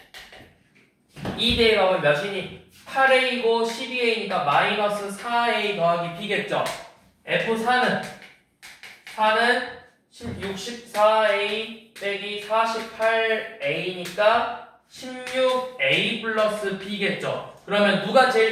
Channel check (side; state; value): both; identical; correlation 1.00